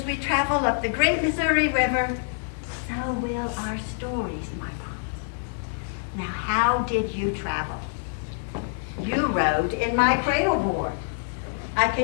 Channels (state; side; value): silent; right; 59 dB below the other